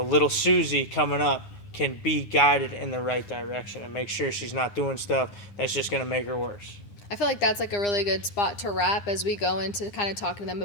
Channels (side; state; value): right; late; 9.8 ms